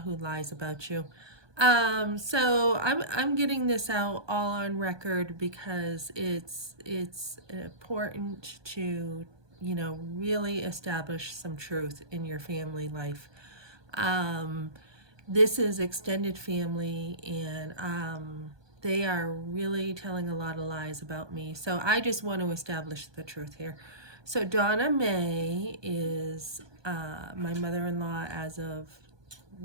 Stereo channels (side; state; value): left; late; 1.2 ms